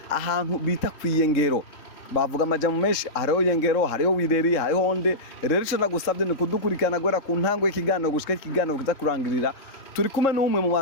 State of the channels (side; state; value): right; late; 3.6 ms